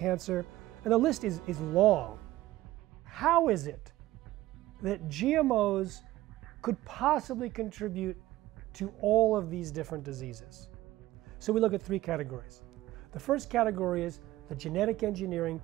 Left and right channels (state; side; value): quieter; left; 16.2 dB